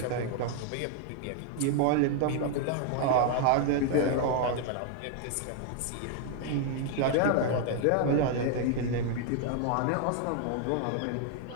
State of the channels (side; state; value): both; different; correlation 0.00